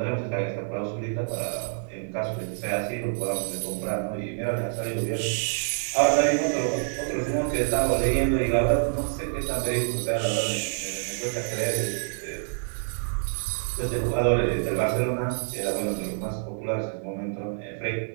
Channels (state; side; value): silent; left; digital silence